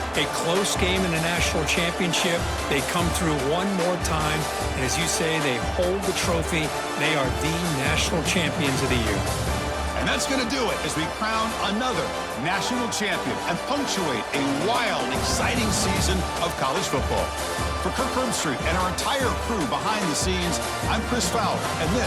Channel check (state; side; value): identical; both; correlation 1.00